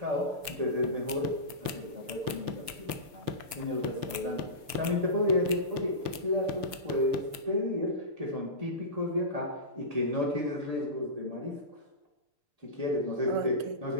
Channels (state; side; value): late; left; 6.8 ms